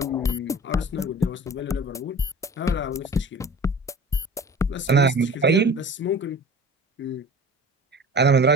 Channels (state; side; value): normal; both; correlation 0.41